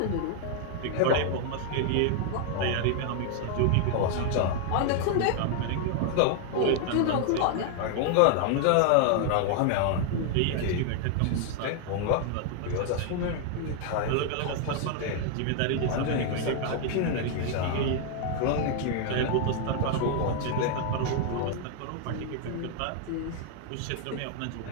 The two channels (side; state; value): both; different; correlation 0.00